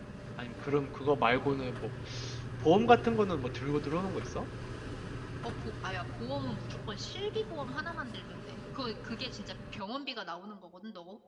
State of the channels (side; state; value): both; identical; correlation 1.00